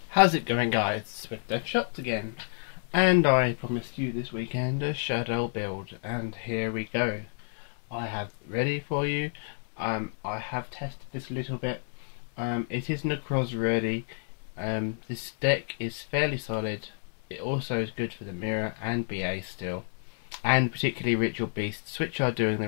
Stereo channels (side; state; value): right; silent; 58 dB below the other